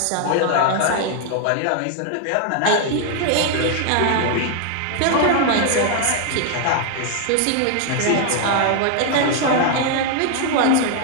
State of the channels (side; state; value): both; different; correlation 0.00